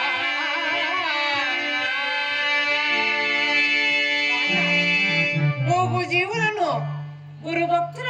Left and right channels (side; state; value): both; identical; correlation 1.00